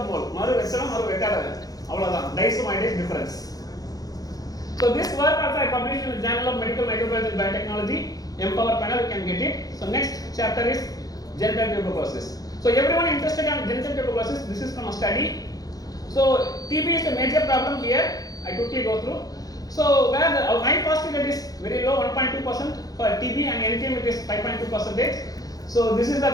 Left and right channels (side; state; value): right; late; 0.18 ms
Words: mole. Maru Vesalam, Maru Vekada. Avladhan. DICE to My Dice difference. So this work also I published in the Journal of Medical Microbiology and Biotechnology. Empower panel, you can get it. So next chapter is genital tuberculosis. So everyone interested in genital tuberculosis, this is from a study. So TB is a major problem here. I quickly go through. So where the my positive rate is very low, 1.2% for TB, and NTM it is 5.2%. So this is the